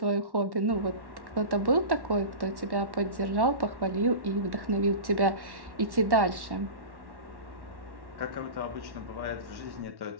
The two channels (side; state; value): left; late; 1.1 ms